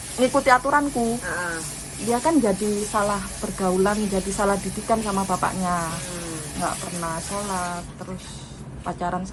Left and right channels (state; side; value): identical; both; correlation 1.00